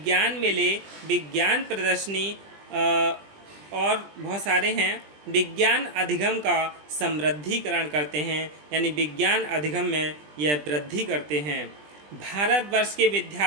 मेले, विज्ञान प्रदर्शनी और बहुत सारे हैं, विज्ञान अधिगम का समृद्धिकरण करते हैं, यानी विज्ञान अधिगम में यह वृद्धि करते हैं। भारतवर्ष के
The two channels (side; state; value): left; late; 20 ms